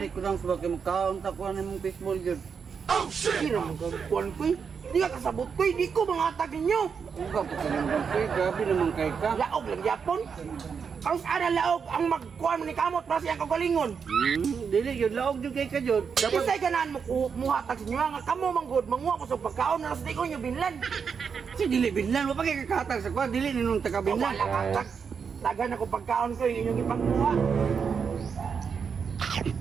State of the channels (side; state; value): left; quieter; 6.3 dB